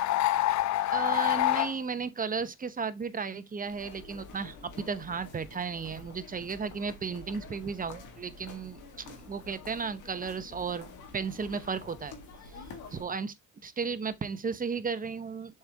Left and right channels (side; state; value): both; normal; correlation 0.10